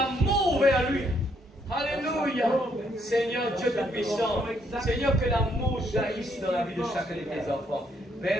vers lui. Alléluia. Seigneur Dieu Tout-Puissant, Seigneur, que l'amour jaillisse dans la vie de chacun de tes enfants.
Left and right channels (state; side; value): normal; both; correlation 0.71